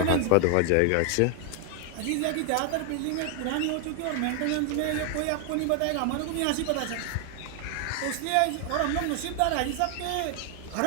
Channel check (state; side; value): different; both; correlation 0.00